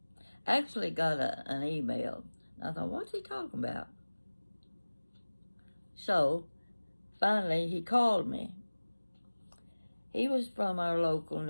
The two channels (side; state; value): both; inverted; correlation -1.00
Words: Actually got an email. I thought, what's he talking about? So, finally, he called me. He was from our local